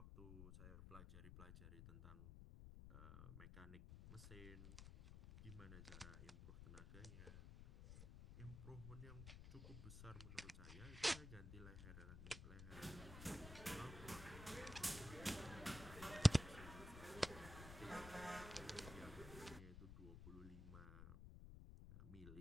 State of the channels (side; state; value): left; noise; rumble, 11 dB below the sound